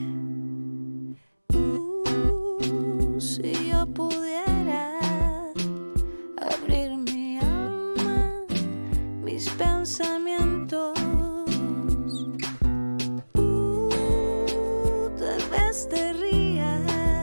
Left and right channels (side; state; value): both; inverted; correlation -1.00